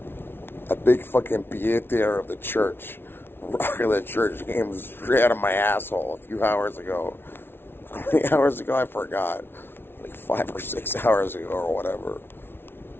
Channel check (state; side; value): late; right; 0.11 ms